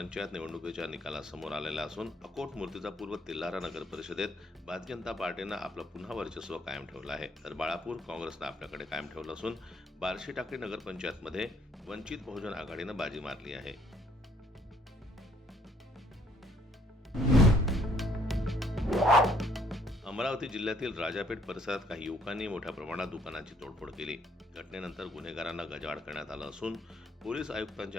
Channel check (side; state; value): both; normal; correlation 0.65